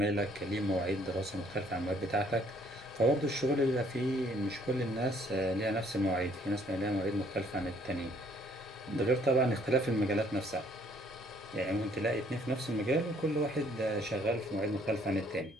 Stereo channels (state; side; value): normal; both; correlation 0.63